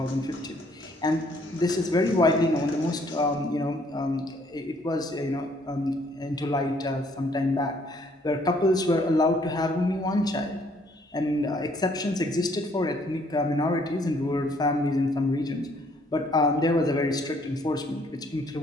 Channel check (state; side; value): normal; both; correlation 0.64